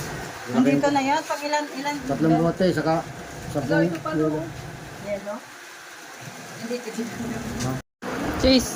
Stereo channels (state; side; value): identical; both; correlation 1.00